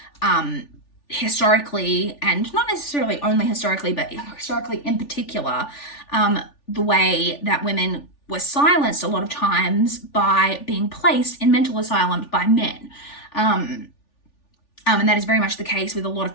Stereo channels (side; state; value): right; late; 3.4 ms